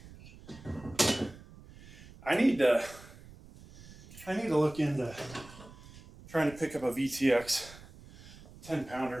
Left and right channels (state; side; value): noise; right; rumble, 19 dB below the sound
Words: I need to look into trying to pick up a VTX